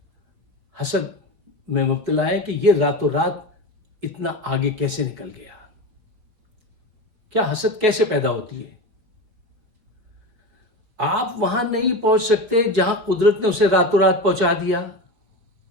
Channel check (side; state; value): left; late; 4.3 ms